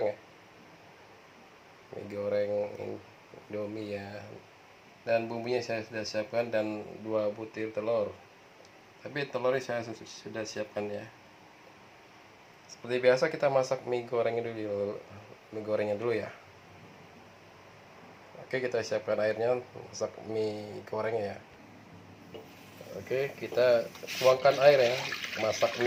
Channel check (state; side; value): identical; both; correlation 1.00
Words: ya, mie goreng Indomie ya. Dan bumbunya saya sudah siapkan dan 2 butir telur. Tapi telurnya saya sudah siapkan ya. Seperti biasa kita masak mie gorengnya dulu ya. Oke, kita siapkan airnya, masak mie gorengnya ya. Oke, kita tuangkan air ya, masak